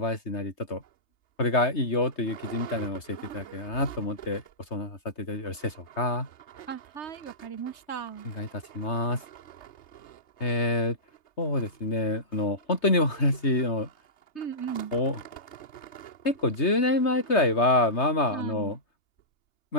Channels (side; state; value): right; late; 3.3 ms